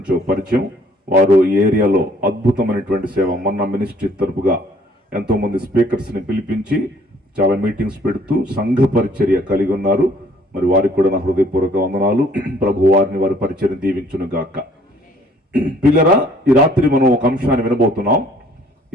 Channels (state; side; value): normal; both; correlation 0.59